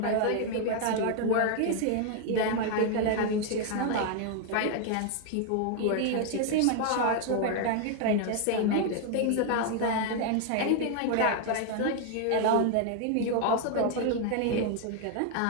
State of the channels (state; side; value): different; both; correlation 0.00